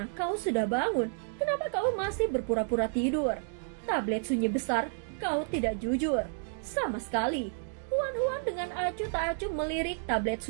kau sudah bangun, kenapa kau masih berpura-pura tidur? Tablet sunyi besar, kau tidak jujur. Sama sekali. Huan dengan acuh tak acuh melirik tablet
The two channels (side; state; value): left; silent; digital silence